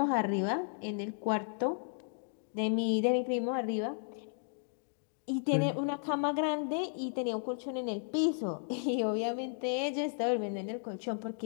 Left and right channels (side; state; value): right; silent; digital silence